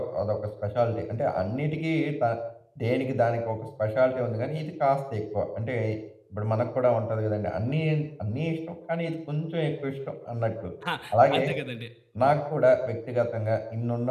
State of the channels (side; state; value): both; identical; correlation 1.00